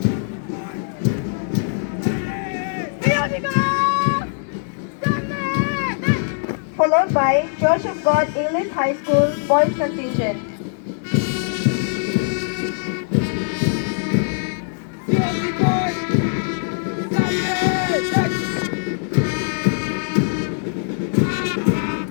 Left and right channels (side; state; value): right; silent; digital silence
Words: Followed by Church of God English High School Boys Contingent.